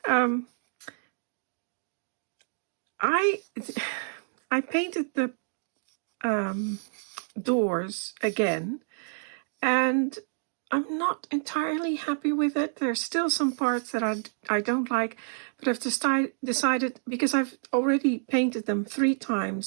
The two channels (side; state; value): left; silent; digital silence